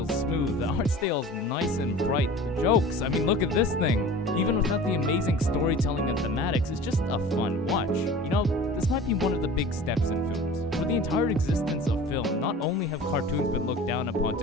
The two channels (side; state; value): both; normal; correlation 0.41